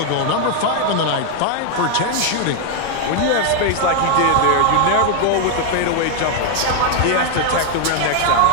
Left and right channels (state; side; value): different; both; correlation 0.00